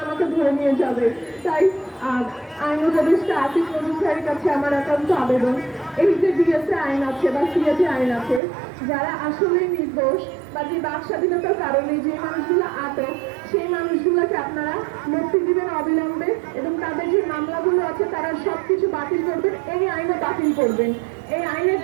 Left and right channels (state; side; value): drops out; left; at 8.4 s